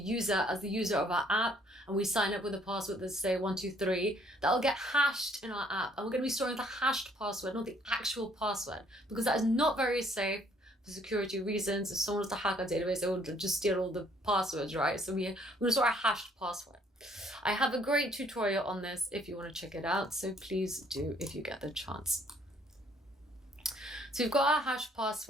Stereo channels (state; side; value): normal; both; correlation 0.63